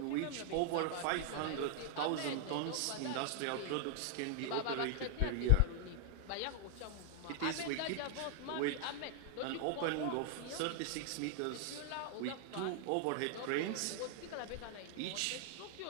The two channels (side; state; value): both; different; correlation 0.00